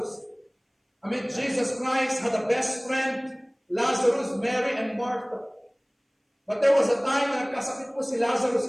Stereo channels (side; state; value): both; identical; correlation 1.00